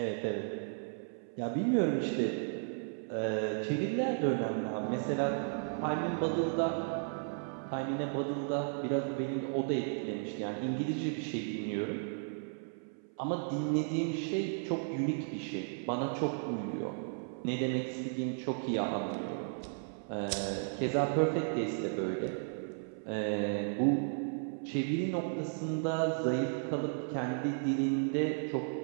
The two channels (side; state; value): left; silent; 55 dB below the other